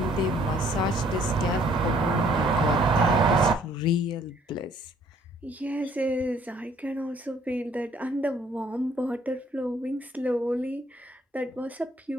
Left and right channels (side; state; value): both; normal; correlation 0.62